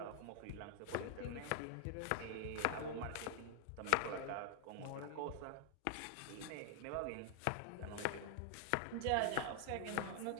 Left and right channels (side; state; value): both; different; correlation 0.00